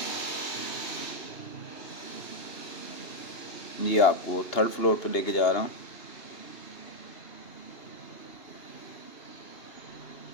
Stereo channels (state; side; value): late; right; 2.8 ms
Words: ये आपको 3rd फ्लोर पे लेके जा रहा हूँ।